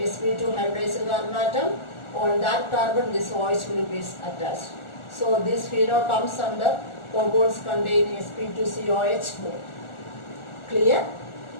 hybridized carbon atom. On that carbon this OH group is attached. So this phenol comes under compounds containing sp2COH bond. Clear?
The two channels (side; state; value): right; late; 1.4 ms